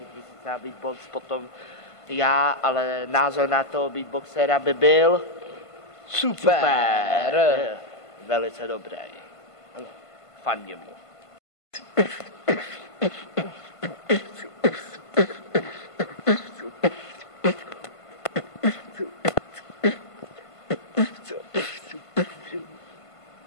1000 na beatbox, potom já, ale názor na toho beatboxera by byl super. Velice dobrý. Fandím mu.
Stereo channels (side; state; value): right; late; 1.5 ms